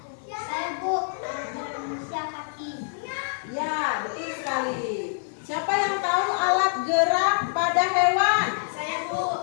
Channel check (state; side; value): silent; right; digital silence